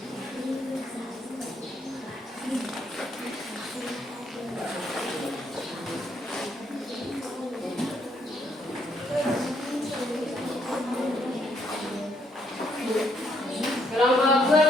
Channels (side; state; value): both; normal; correlation 0.72